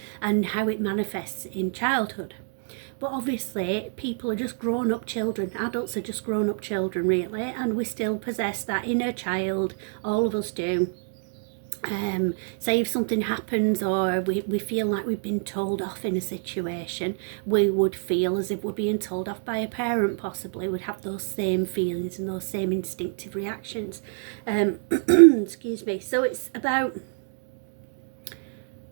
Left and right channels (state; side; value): silent; left; 60 dB below the other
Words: and how it manifests in childhood. But obviously people are just grown up children, adults are just grown up children really, and we still possess that inner child, all of us do. Say if something happens or we feel like we've been told off in a situation, we would feel as if we're being told off by a parent, possibly would have those same feelings and those same instinctive reactions. Excuse me. So it's about,